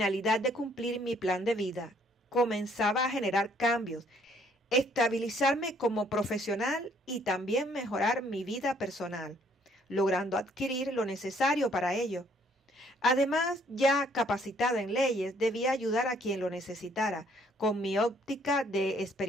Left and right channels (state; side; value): normal; both; correlation 0.64